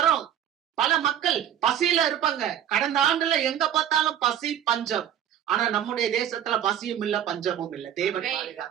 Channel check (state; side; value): quieter; left; 10.2 dB